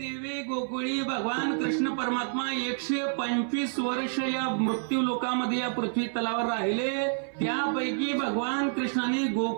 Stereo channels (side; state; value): left; silent; 59 dB below the other